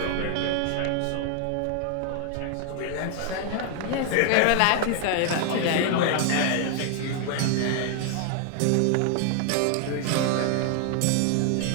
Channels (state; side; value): different; both; correlation 0.00